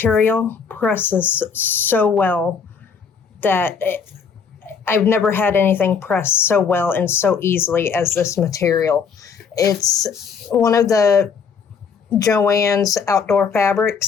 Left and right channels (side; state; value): right; quieter; 6.1 dB